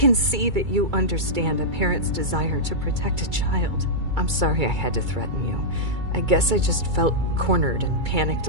see that you understand a parent's desire to protect a child. I'm sorry I had to threaten you. I guess I just felt cornered and panicked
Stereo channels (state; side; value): late; left; 2.3 ms